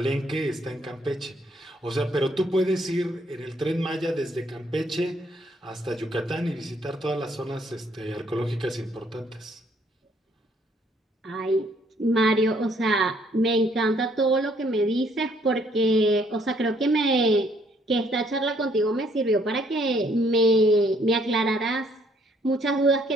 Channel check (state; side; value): normal; both; correlation 0.66